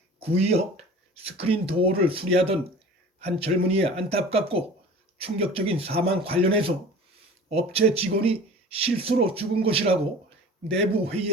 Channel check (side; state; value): both; normal; correlation 0.41